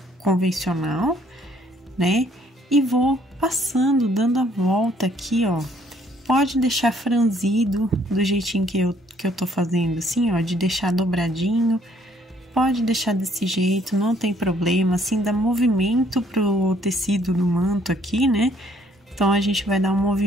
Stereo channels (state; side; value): normal; both; correlation 0.64